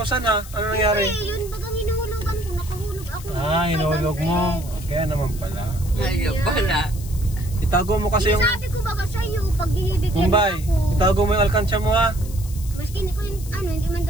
ha. Ano nangyari? Eh, yun bagang hinuhulugan ko, nakahulog ako. Hinulog mo. Kaya naman pala. Ayaw pala. Itago mo kasi yung... Sabi ko baga sa'yo, pag binibigyan Bombay, ako. itago mo yung alkansya mo ha. Maski hindi ko yung, hindi man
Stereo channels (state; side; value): noise; left; hiss, 16 dB below the sound